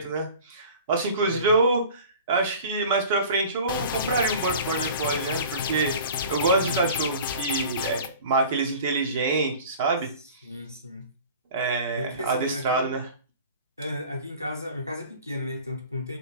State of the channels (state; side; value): inverted; both; correlation -0.42